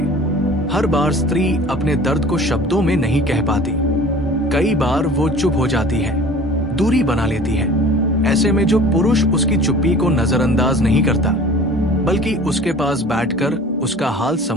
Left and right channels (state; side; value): normal; both; correlation 0.44